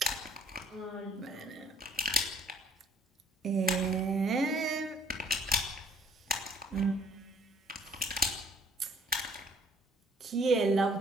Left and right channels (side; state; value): both; normal; correlation 0.59